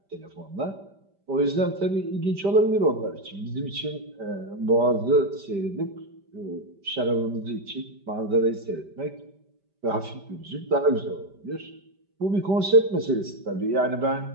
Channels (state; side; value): late; left; 5.1 ms